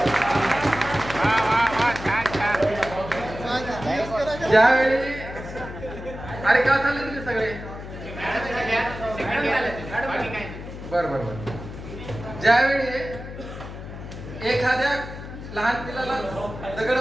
ज्यावेळी अरे का झाले तुम्ही सगळे बर बर बर. ज्यावेळी एखाद्या लहान पिलाला दगड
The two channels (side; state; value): left; noise; hum, 11 dB below the sound